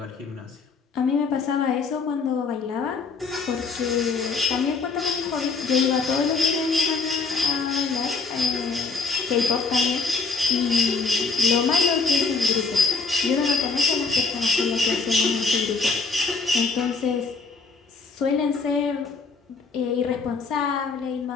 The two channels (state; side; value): quieter; right; 4.5 dB